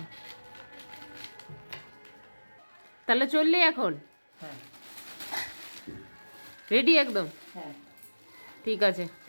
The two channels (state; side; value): inverted; both; correlation -1.00